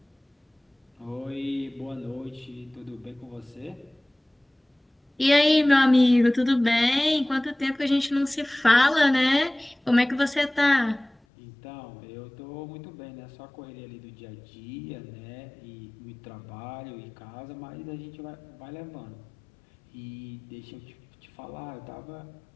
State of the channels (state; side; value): drops out; right; at 11.2 s